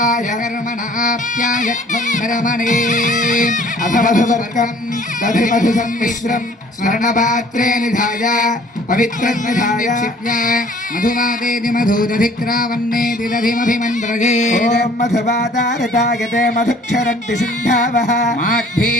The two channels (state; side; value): normal; both; correlation 0.54